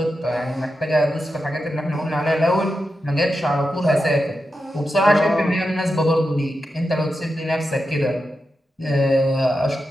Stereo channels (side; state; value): both; normal; correlation 0.89